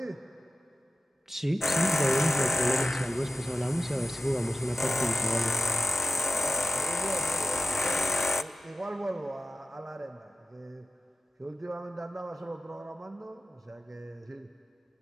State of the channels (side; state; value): both; normal; correlation 0.95